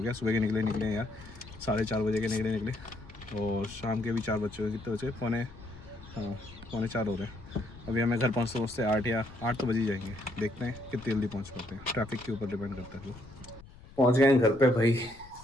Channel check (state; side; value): noise; left; rumble, 20 dB below the sound